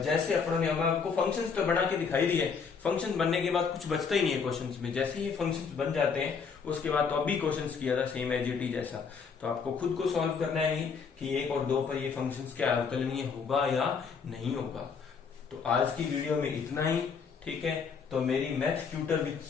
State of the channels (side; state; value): right; quieter; 5.8 dB